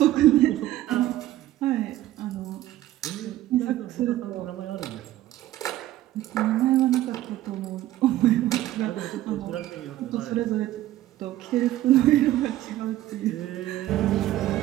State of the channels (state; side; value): quieter; left; 14.4 dB